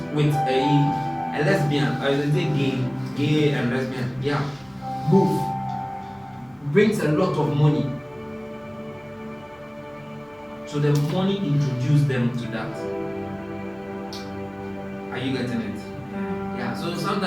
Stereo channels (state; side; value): noise; right; hum, 30 dB below the sound